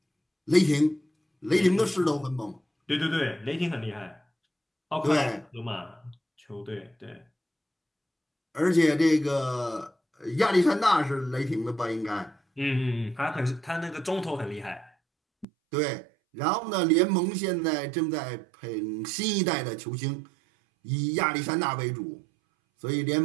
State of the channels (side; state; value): left; drops out; at 15.5 s